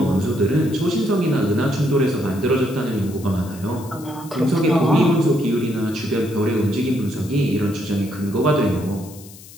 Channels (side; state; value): left; noise; hiss, 19 dB below the sound